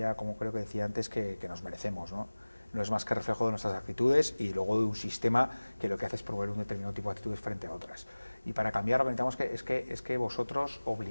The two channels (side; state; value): both; inverted; correlation -1.00